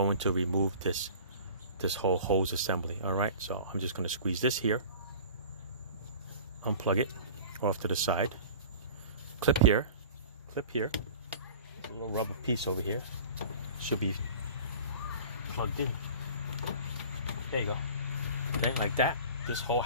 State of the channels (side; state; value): both; inverted; correlation -0.41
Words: to remove this whole hose assembly. All right, so I'm just going to squeeze this here, unplug it off to the side, clip here, a little rubber piece over here, should be plugged in. There you go. Okay, like that. This whole